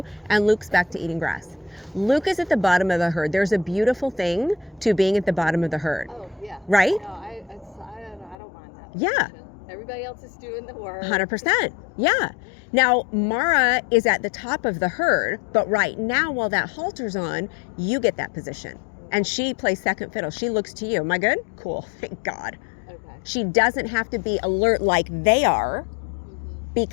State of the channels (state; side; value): drops out; right; at 8.3 s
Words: and Luke's back to eating grass. Luke is at the bottom of the herd. There's a beautiful thing to being at the bottom of the herd. Oh, yeah. Right? No, I don't mind that. Yeah. Everybody else is doing the work. 100%. Yeah. Now, Mara is at the top of the herd, but right now, while that halter's on, you get that position. And she plays second fiddle. She looks to you. Am I good? Cool. Thank God. Okay. She doesn't have to be alert like they are